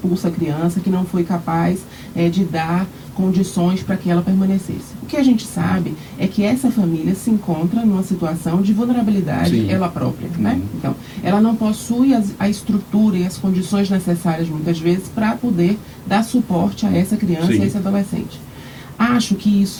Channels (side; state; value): both; identical; correlation 1.00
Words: a criança, que não foi capaz de dar condições para que ela permanecesse. O que a gente sabe é que essa família se encontra numa situação de vulnerabilidade ela própria, né? Então, ela não possui a estrutura e as condições necessárias, muitas vezes, para poder dar suporte a essa criança e a esse adolescente. Acho que